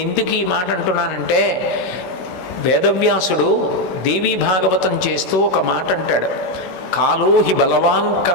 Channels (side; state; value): right; late; 16 ms